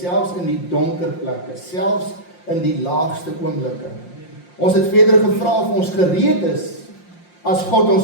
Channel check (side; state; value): right; late; 5.7 ms